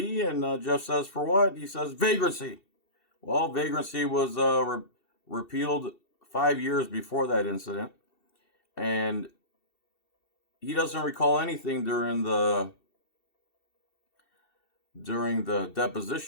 And Jeff says, "For what?" He says, "Vagrancy." Well, vagrancy was repealed 5 years before that incident. And he doesn't recall anything during the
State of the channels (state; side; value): late; right; 2.7 ms